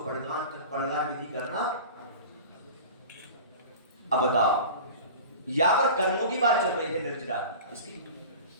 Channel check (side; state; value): both; inverted; correlation -0.36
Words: विधि करना। अब बताओ, यहां पर कर्मों की बात चल रही है, निर्जरा की, इसकी,